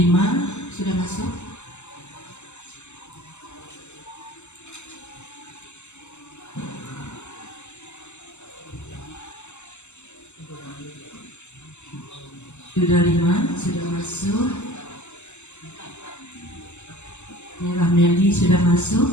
sudah masuk. Sudah 5 sudah masuk. Merah Meli sudah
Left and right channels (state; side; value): late; right; 0.83 ms